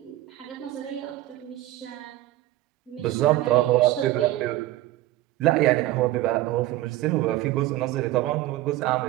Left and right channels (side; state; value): left; quieter; 15.7 dB